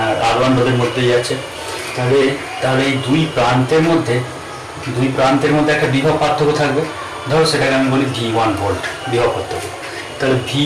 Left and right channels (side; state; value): both; identical; correlation 1.00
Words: R1 রোধের মধ্যে যাচ্ছে। তাহলে এই দুই প্রান্তের মধ্যে একটা বিভব পার্থক্য থাকবে। ধরো সেটাকে আমি বলি V1 ভোল্ট বিভব পার্থক্য। তাহলে